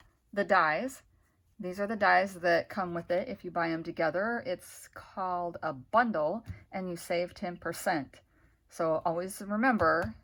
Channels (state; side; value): identical; both; correlation 1.00